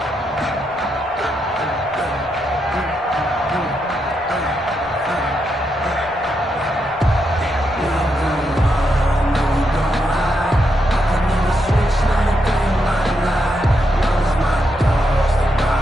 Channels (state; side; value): normal; both; correlation 0.81